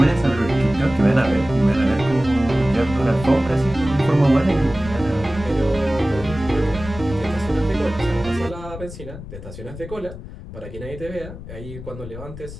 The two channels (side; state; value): left; noise; rumble, 13 dB below the sound